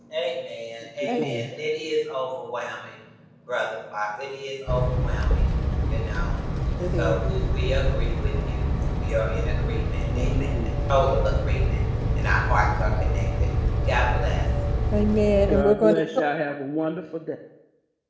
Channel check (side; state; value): both; identical; correlation 1.00